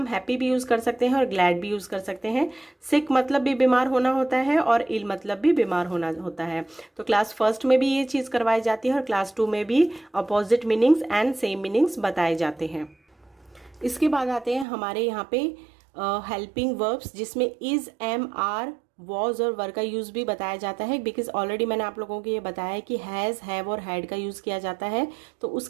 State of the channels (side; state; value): left; drops out; at 14.7 s